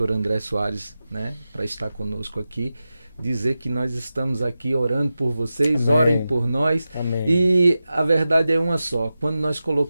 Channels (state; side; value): inverted; both; correlation -0.93